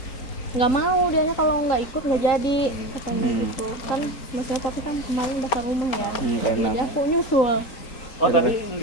Nggak mau dianya kalau nggak ikut nggak jadi katanya gitu kan, maksudnya tapi kan kemarin bakal rumah ya, jadi aku nyusul. Oh tadi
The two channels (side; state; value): right; late; 3.8 ms